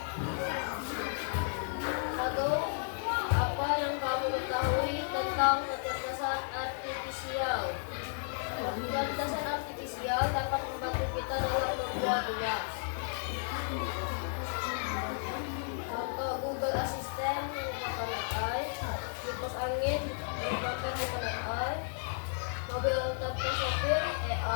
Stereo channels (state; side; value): silent; right; digital silence